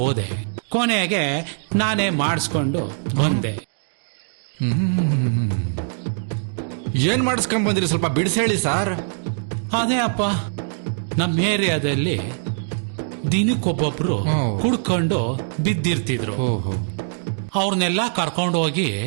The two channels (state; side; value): silent; left; digital silence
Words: ಕೊನೆಗೆ ನಾನೇ ಮಾಡಿಸ್ಕೊಂಡು ಬಂದೆ. ಏನ್ ಮಾಡಿಸ್ಕೊಂಡ್ ಬಂದಿರಿ? ಸ್ವಲ್ಪ ಬಿಡಿಸಿ ಹೇಳಿ ಸರ್. ಅದೇ ಅಪ್ಪ, ನಮ್ಮ ಏರಿಯಾದಲ್ಲಿ ದಿನಕ್ಕೊಬ್ಬೊಬ್ರು ಕುಡ್ಕೊಂಡು ಬಿದ್ದಿರ್ತಿದ್ರು. ಅವ್ರನ್ನೆಲ್ಲ ಕರ್ಕೊಂಡು ಹೋಗಿ